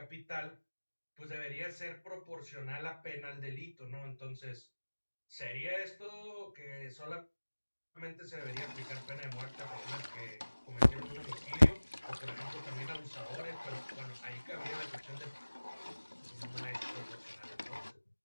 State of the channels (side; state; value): both; inverted; correlation -1.00